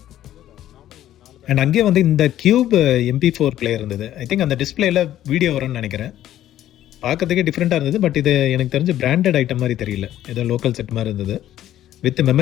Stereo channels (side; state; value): right; quieter; 12.5 dB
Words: அண்ட் அங்கேயே வந்து இந்த கியூப் MP4 பிளேயர் இருந்தது. ஐ திங்க் அந்த டிஸ்பிளேல வீடியோ வரும்னு நினைக்கிறேன். பார்க்கறதுக்கே டிஃப்ரெண்ட்டாக இருந்தது. பட் இது எனக்கு தெரிஞ்சு பிராண்டட் ஐட்டம் மாதிரி தெரியல, ஏதோ லோக்கல் செட் மாதிரி இருந்தது. வித்